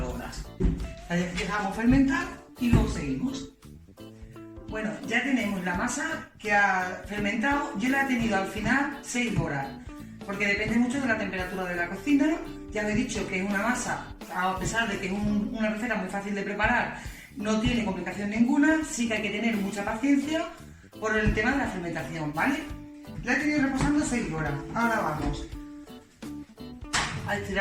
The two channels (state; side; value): identical; both; correlation 1.00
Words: horas. La dejamos fermentar y luego seguimos. Bueno, ya tenemos la masa que ha fermentado. Yo la he tenido al final 6 horas. Porque depende mucho de la temperatura de la cocina. Ya os he dicho que es una masa, a pesar de que es una receta muy fácil de preparar, no tiene complicación ninguna. Sí que hay que tener mucha paciencia por el tema de la fermentación, ¿vale? La he tenido reposando 6 horas. Ahora vamos a